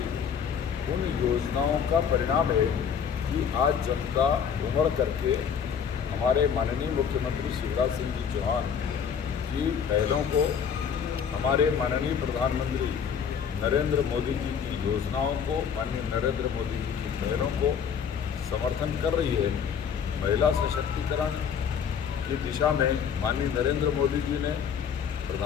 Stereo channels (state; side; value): quieter; right; 7.3 dB